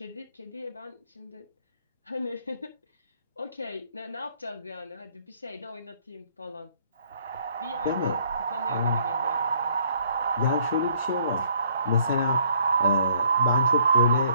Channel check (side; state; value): both; inverted; correlation -0.63